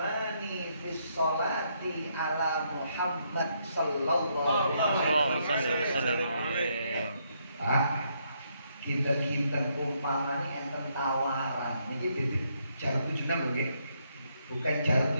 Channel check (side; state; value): both; inverted; correlation -0.75